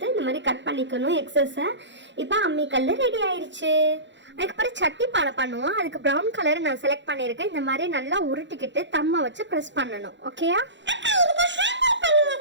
இந்த மாதிரி கட் பண்ணிக்கணும் எக்ஸஸை. இப்போ அம்மிக்கல் ரெடி ஆயிடுச்சு. அதுக்கப்புறம் சட்டி பானை பண்ணுவோம். அதுக்கு ப்ரௌன் கலர் நான் செலக்ட் பண்ணியிருக்கேன். இந்த மாதிரி நல்லா உருட்டிக்கிட்டு தம்மை வச்சு ப்ரெஸ் பண்ணணும். ஓகேயா?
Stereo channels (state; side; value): late; left; 0.53 ms